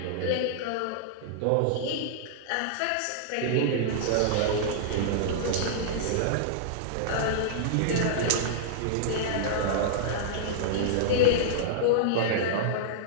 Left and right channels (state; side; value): different; both; correlation -0.02